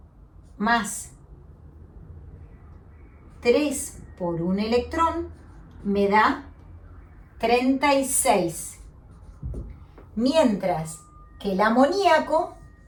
más 3 por un electrón, me da 36. Mientras que el amoníaco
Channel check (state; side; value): identical; both; correlation 1.00